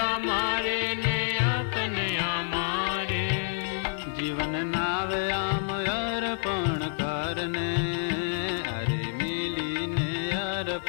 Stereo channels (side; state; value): right; silent; digital silence